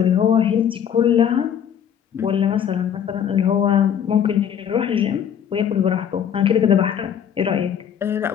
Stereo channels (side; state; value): right; quieter; 8.7 dB